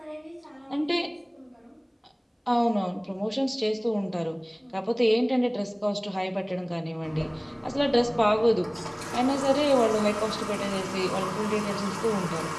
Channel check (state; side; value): identical; both; correlation 1.00